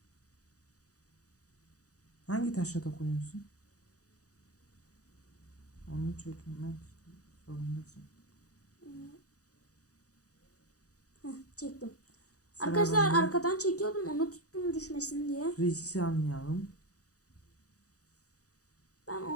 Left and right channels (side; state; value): right; late; 0.67 ms